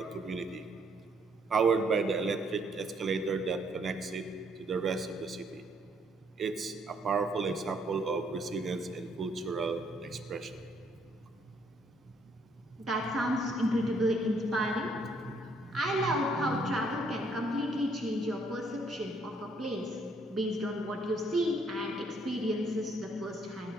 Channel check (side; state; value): both; normal; correlation 0.68